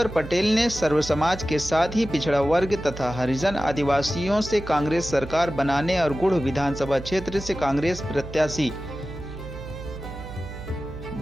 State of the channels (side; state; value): right; noise; hum, 12 dB below the sound